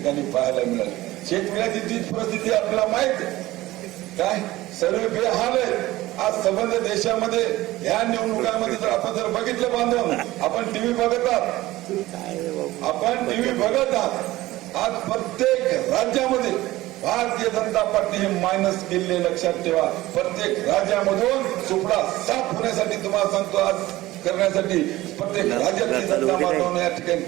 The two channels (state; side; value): quieter; left; 17.4 dB